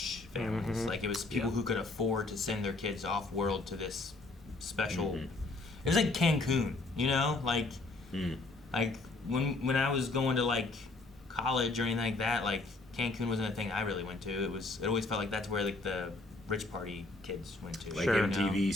families. Like it was people who could afford to send their kids off world to this special. It was like Cancun, you know, like when I was going to like college or anything like that, like Cancun wasn't a thing I really went to. It always felt like that's where like the rich party kids went to. Like Sure. MTV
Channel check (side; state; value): right; quieter; 3.3 dB